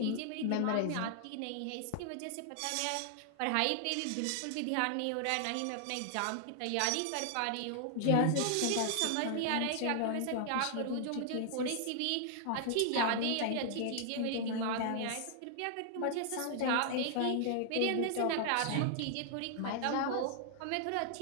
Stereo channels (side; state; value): both; different; correlation 0.00